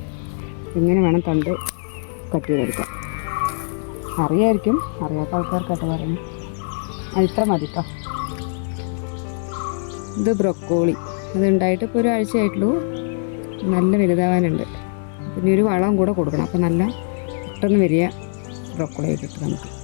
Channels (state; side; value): silent; right; 64 dB below the other